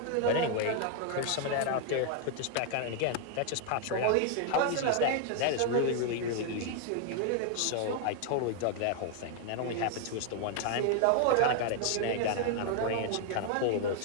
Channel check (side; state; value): both; different; correlation 0.00